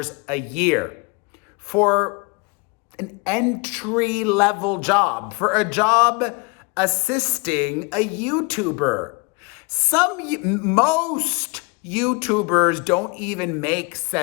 a year for an entry-level job, for a job assisting a YouTuber. Most YouTubers don't even make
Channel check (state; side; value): quieter; right; 30.6 dB